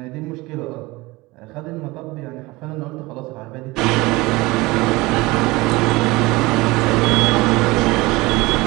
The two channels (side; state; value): left; quieter; 21.7 dB